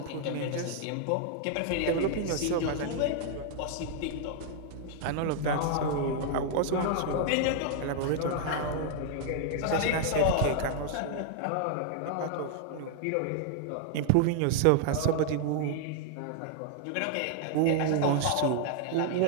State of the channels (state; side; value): different; both; correlation 0.00